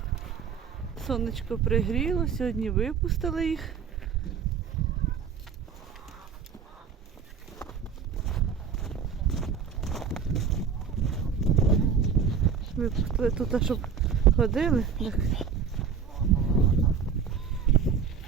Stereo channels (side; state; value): left; quieter; 6.8 dB